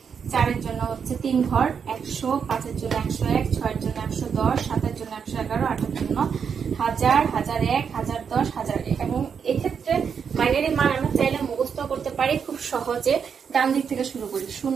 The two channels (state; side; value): quieter; left; 6.8 dB